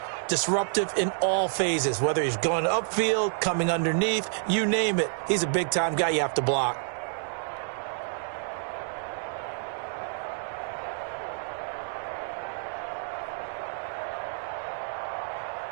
disruptive in all phases, whether he's going upfield, coming underneath, you name it. He's a big-time guy you have to block.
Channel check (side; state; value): left; silent; digital silence